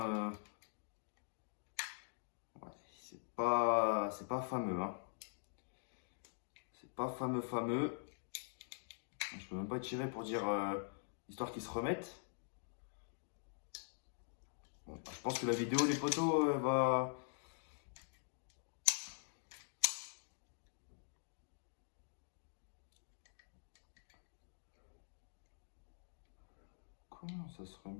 ouais, c'est pas fameux. Hein. C'est pas fameux. Je peux même pas tirer pour dire... histoire qu'ils se remettent. Bon, je pense que la vidéo, les potos, va... Comment ça se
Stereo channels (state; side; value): silent; right; digital silence